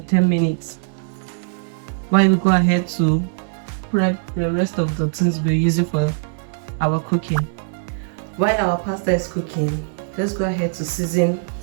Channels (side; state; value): left; silent; digital silence